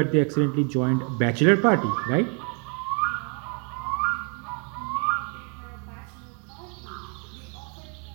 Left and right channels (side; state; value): left; quieter; 37.9 dB